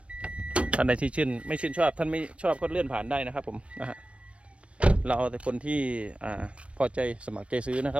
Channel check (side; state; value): left; late; 0.061 ms